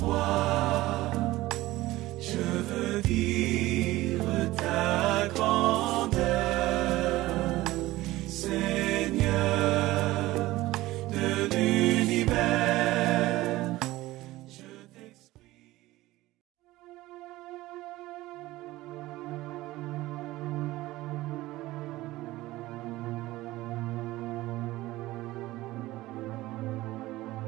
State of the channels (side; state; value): left; quieter; 17.7 dB